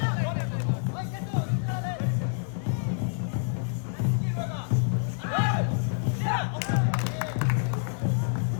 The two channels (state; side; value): silent; right; 59 dB below the other